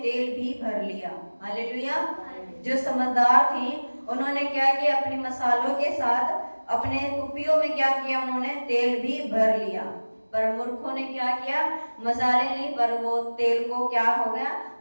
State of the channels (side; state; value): both; inverted; correlation -1.00